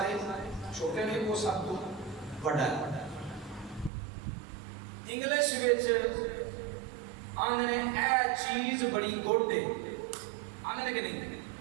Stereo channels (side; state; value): left; drops out; at 3.9 s